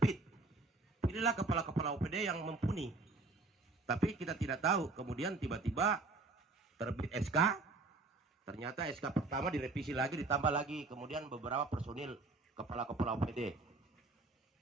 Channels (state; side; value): quieter; left; 3.5 dB